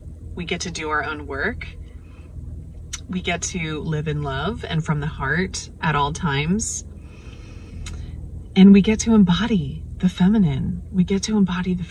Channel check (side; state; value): both; identical; correlation 1.00